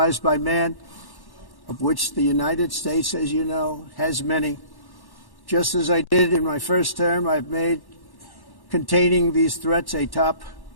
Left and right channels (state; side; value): late; right; 1.1 ms